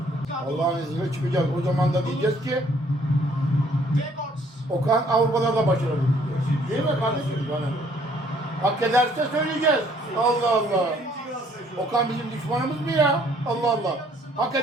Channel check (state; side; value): normal; both; correlation 0.62